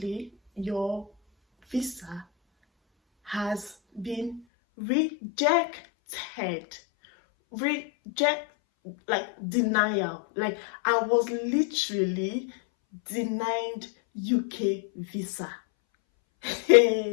your visa has been rejected. Like denial. Like I was literally denied UK visa.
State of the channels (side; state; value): right; drops out; at 4.4 s